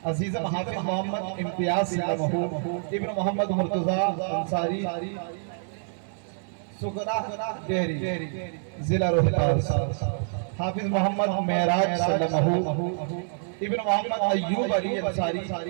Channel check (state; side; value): silent; left; digital silence